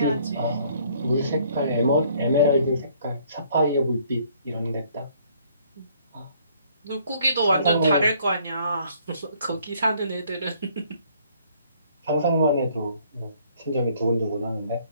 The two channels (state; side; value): inverted; both; correlation -0.62